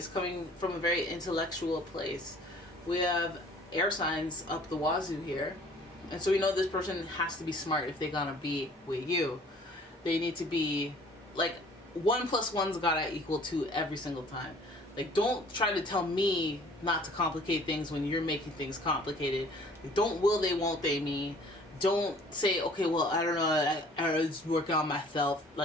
coming from a very intellectual place. We have air signs up the wazoo here. And so we know this person has to be smart if they're gonna be with you. They need to be like 1 + 1's gotta equal 2 every single time. Like, don't try to tell me not to complicate things when you're making things complicated. Like, don't will they, won't they me. Don't say, okay, well, I don't know, I was working on myself.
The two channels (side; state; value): both; normal; correlation 0.53